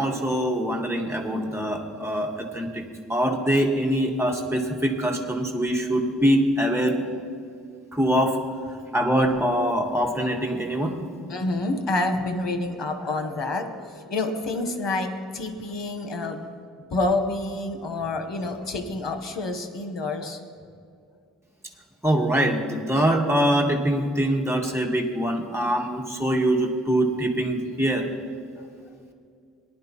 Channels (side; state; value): both; normal; correlation 0.66